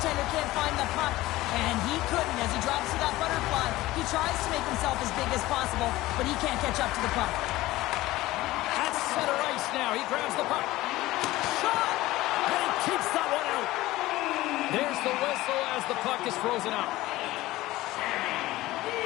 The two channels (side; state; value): right; quieter; 17.6 dB